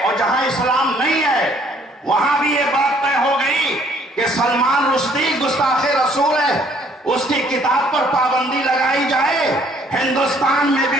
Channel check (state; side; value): normal; both; correlation 0.62